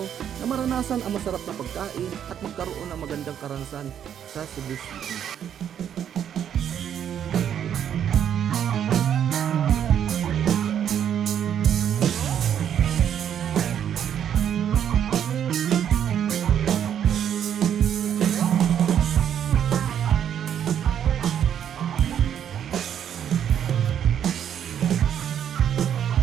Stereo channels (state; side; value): quieter; left; 9.3 dB